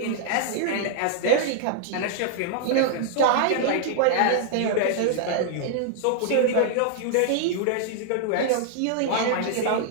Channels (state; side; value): different; both; correlation -0.01